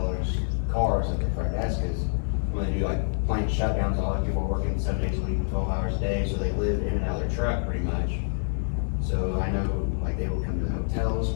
cars at the front desk, because when they do like plant shutdowns, a lot of people are working 7 days a week, 12 hours a day, so they live in and out of their truck pretty much. So I know like they will come to the hotels,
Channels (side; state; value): right; silent; digital silence